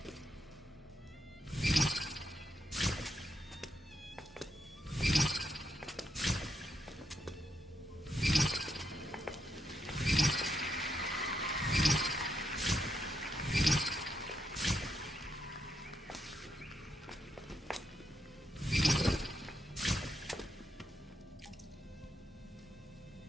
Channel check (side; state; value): both; normal; correlation 0.80